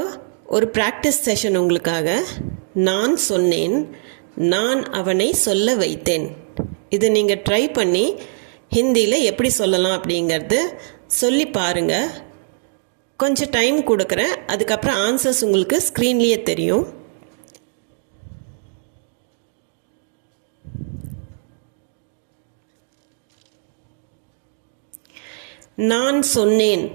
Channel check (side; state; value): left; silent; digital silence